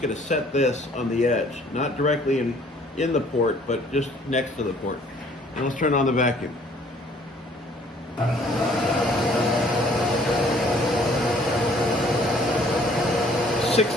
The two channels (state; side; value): normal; both; correlation 0.59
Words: going to set this on the edge, not directly in the port, but just next to the port. And let's turn on the vacuum.